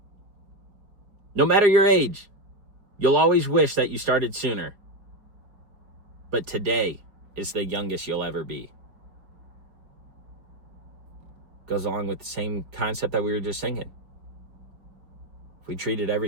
No matter your age, you'll always wish that you started sooner. But today is the youngest you'll ever be. Goes along with the same concept that we were just singing. If we treated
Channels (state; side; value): late; left; 4.7 ms